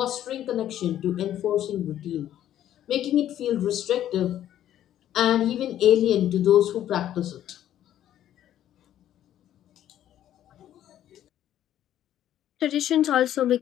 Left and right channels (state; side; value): quieter; right; 11.6 dB